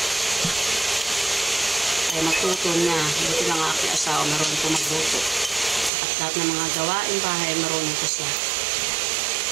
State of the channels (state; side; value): drops out; left; at 5.9 s